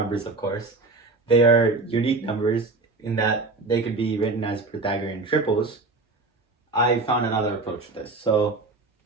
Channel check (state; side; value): quieter; left; 3.5 dB